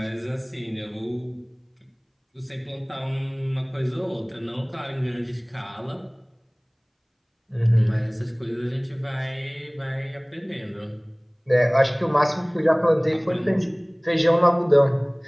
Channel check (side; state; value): both; identical; correlation 1.00